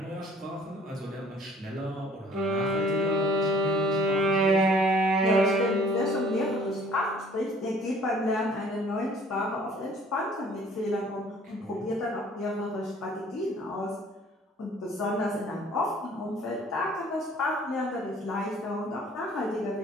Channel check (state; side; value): normal; both; correlation 0.54